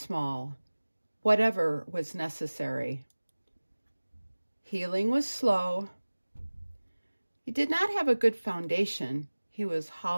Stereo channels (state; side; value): inverted; both; correlation -1.00